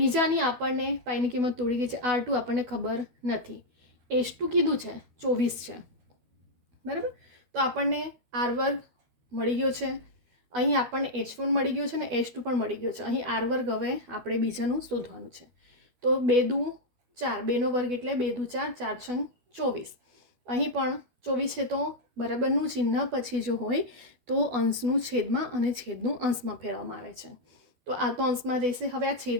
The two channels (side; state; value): left; late; 13 ms